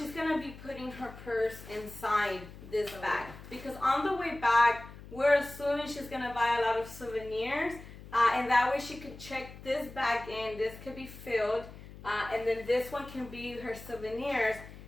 going to be putting her purse inside this bag. Because on the way back, we're assuming she's going to buy a lot of souvenirs. And that way she could check this bag in. This could be filled. And then this one can be her souvenirs.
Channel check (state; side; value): noise; left; hum, 16 dB below the sound